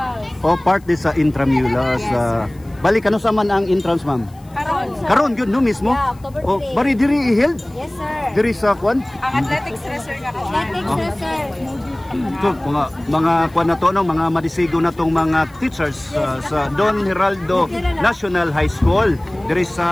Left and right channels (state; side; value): noise; left; hiss, 29 dB below the sound